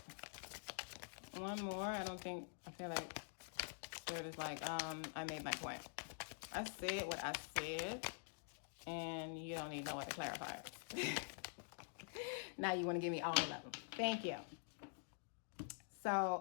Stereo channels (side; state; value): right; silent; digital silence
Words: One more. I feel like Spirit is like, I made my point. I said what I said, and you don't need no way to clarify it. Now you want to give me all of them. Thank you.